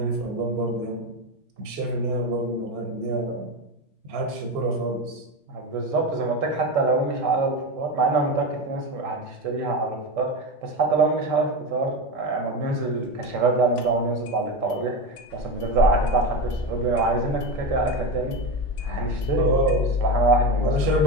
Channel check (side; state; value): both; normal; correlation 0.19